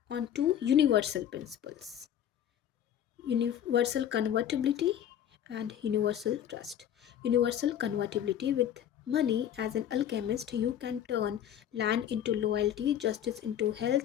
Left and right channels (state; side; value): quieter; right; 10.2 dB